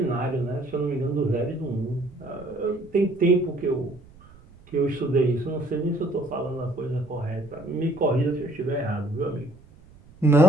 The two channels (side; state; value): right; noise; rumble, 24 dB below the sound